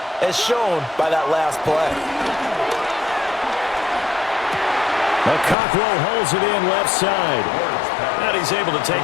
as shown by that last play. Cockrell holds it in left side. And he's able to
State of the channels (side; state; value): right; drops out; at 5.6 s